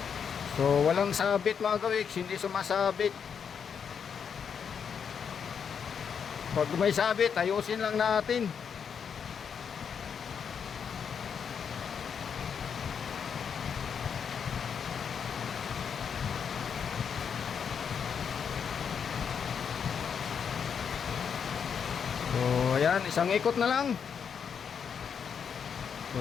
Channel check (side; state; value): right; quieter; 7.0 dB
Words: So walang sabit mga gawiks, hindi sumasabit. Pag may sabit, ayusin lang natin. So ayan, isang ikot na lang.